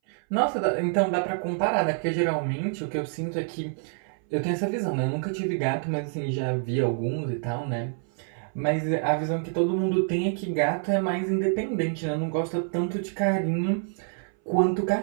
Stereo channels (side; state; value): left; silent; 60 dB below the other